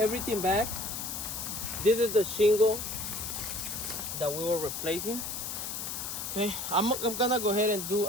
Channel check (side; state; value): left; noise; hiss, 5 dB below the sound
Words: back. This is the shingle that we were replacing. Okay, I'm gonna go ahead and do